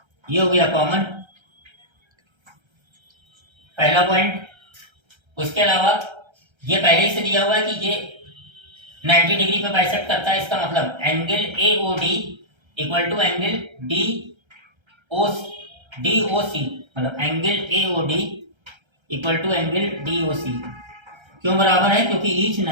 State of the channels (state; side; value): late; left; 1.3 ms